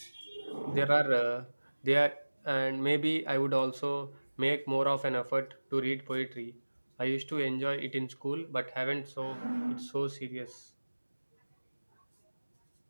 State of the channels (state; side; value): inverted; both; correlation -1.00